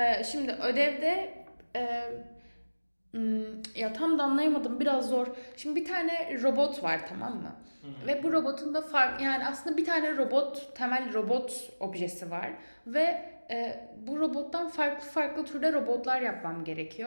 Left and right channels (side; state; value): both; inverted; correlation -1.00